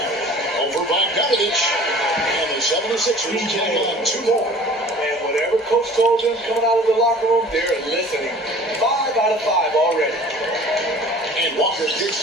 Over by Bogdanovich. And the 76ers take on 2 more. And whatever coach told them coming out of the locker room, they're listening. 5 out of 5 already. And Walker kicks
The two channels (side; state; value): both; normal; correlation 0.46